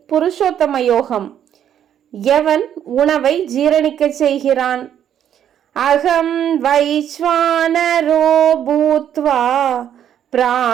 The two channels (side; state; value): left; quieter; 9.8 dB